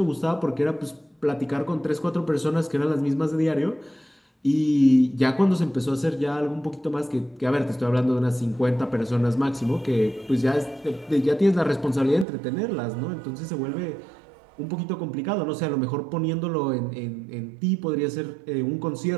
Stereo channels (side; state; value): left; drops out; at 12.2 s